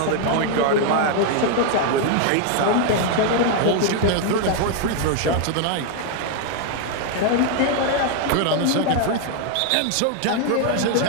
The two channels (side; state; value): both; different; correlation 0.00